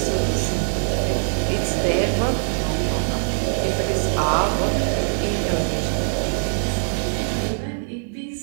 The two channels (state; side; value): silent; left; digital silence